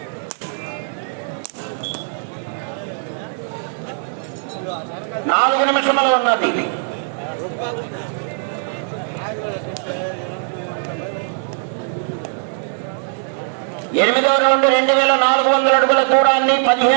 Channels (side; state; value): left; silent; digital silence